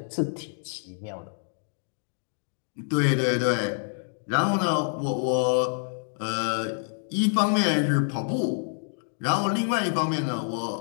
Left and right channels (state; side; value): silent; right; digital silence